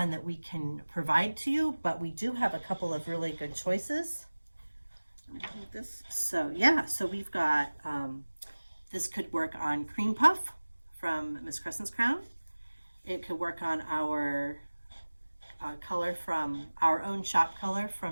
that we can provide to you, but we do have a couple of really good choices. This. So yeah, so we've got this could work on Cream Puff from Miss Crescent's Crown. It could work on our color from our own shop color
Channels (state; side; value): inverted; both; correlation -1.00